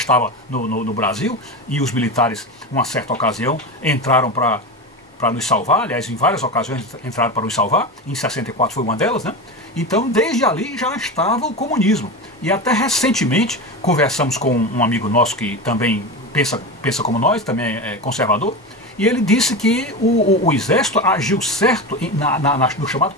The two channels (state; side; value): normal; both; correlation 0.23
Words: no Brasil, e os militares, numa certa ocasião, entraram para nos salvar, aliás, em várias ocasiões entraram para nos salvar, em 64 foi uma delas, né? Então, desde ali já estava o comunismo. E até recentemente, conversamos com um amigo nosso que também pensa como nós, também é conservador, e ele disse que o exército agiu certo no chamado